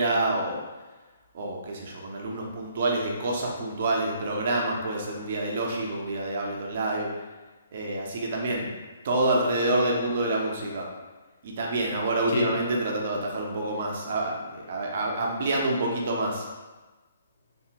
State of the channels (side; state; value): both; inverted; correlation -0.64